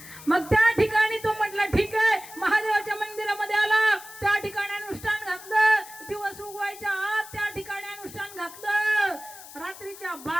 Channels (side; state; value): left; noise; hiss, 16 dB below the sound